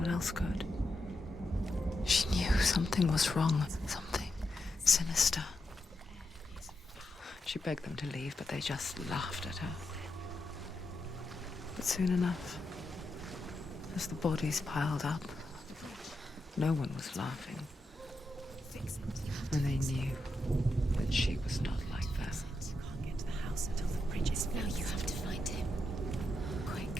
else could. She knew something was wrong, something sinister. She begged them to leave, but they just laughed at her. But soon enough, as the bodies piled up, no one was laughing. And they knew that she was not like them. Can't get to the house until the bridge is Now you have to find him. Quick,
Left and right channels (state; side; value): normal; both; correlation 0.85